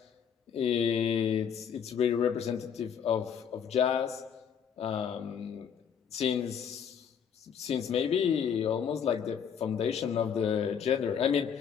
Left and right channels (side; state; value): right; quieter; 7.7 dB